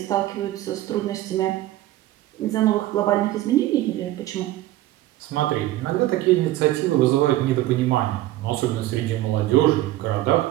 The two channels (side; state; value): left; quieter; 15.6 dB